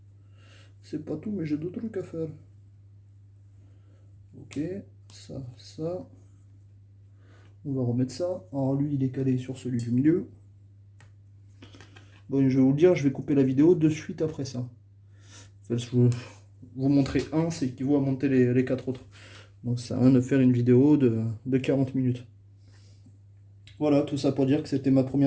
C'est pas tout, mais j'ai d'autres trucs à faire. Ok, ça, ça. On va remettre ça. Alors lui, il est calé sur celui du milieu. Bon, je vais vous le dire, je vais couper la vidéo de suite après ça. Enfin, je vais vous montrer un, c'est qu'il vaut à monter les 4 autres. Donc ça sert à rien de faire une vidéo de 40 minutes. Voilà, tout ça pour dire que c'était ma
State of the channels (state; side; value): identical; both; correlation 1.00